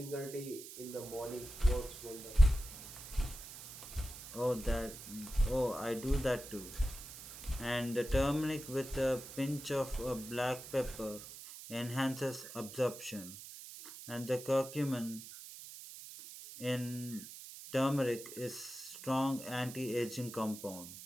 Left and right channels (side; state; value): right; noise; hiss, 13 dB below the sound